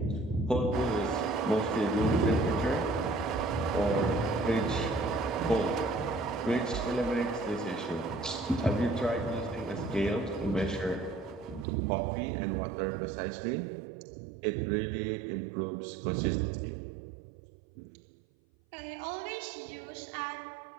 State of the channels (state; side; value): drops out; left; at 11.7 s